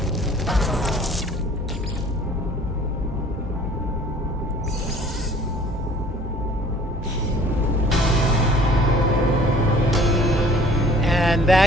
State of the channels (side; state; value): both; normal; correlation 0.52